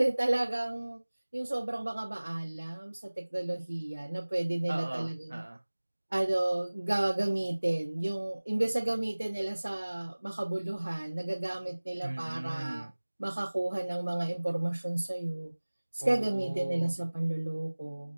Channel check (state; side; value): inverted; both; correlation -1.00